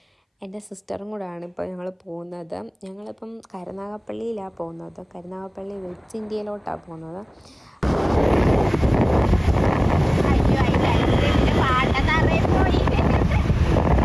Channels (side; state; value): both; identical; correlation 1.00